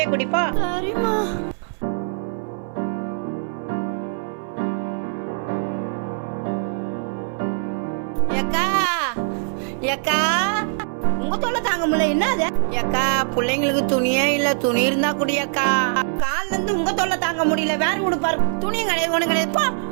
குடிப்போ. சரிம்மா. ஏக்கா ஏக்கா உங்க தொல்லை தாங்க முடியல. என்னது ஏக்கா? பிள்ளைங்களுக்கு துணியே இல்ல, துணி இருந்தா குடியக்கா. கால்ல இருந்து உங்க தொல்லை தாங்க முடியல, வேற உடுப்பாரு. துணியும் கிடையாது, ஒண்ணு கிடையாதுப்பா.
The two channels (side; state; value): left; silent; 64 dB below the other